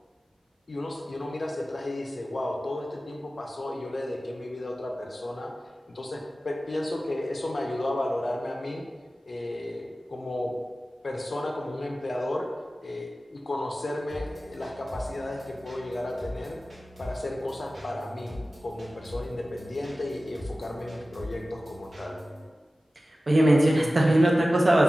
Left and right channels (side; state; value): both; normal; correlation 0.96